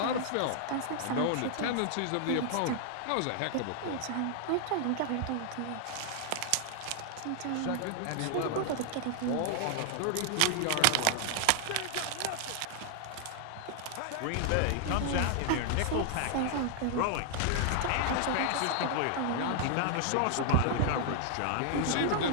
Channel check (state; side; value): different; both; correlation 0.00